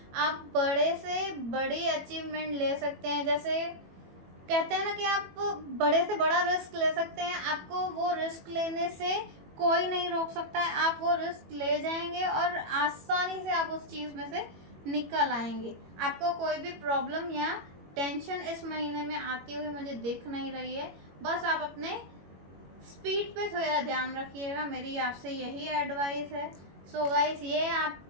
आप बड़े से बड़ी अचीवमेंट ले सकते हैं। जैसे कहते हैं ना कि आप बड़े से बड़ा रिस्क ले सकते हैं, आपको वो रिस्क लेने से कोई नहीं रोक सकता है। आप वो रिस्क ले जाएंगे और आसानी से आप उस चीज़ में से निकल आएंगे। आपको कोई भी प्रॉब्लम या टेंशन इस महीने में आती हुई मुझे दिख नहीं रही है। बस आप अपने स्पीड पे थोड़ा ध्यान रखिएगा, मेरी आपसे यही एडवाइस है। सो गाइस,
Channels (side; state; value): left; late; 21 ms